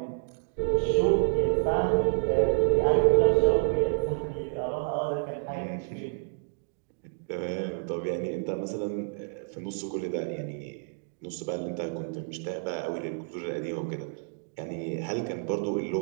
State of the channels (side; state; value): left; silent; digital silence